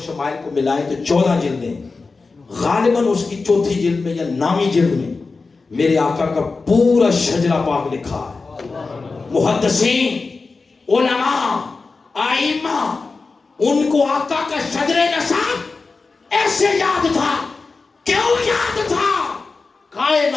شمائل کو ملائیں تو 14 جلدیں. غالباً اس کی 4تھی جلد میں یا 9ویں جلد میں میرے آقا کا پورا شجرہ پاک لکھا ہے. محدثین، علماء، آئمہ، ان کو آقا کا شجر نسب ایسے یاد تھا. کیوں یاد تھا؟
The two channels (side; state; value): right; quieter; 4.1 dB